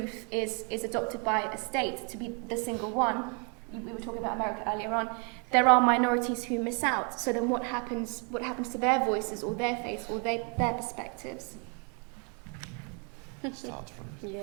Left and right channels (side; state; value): left; quieter; 36.7 dB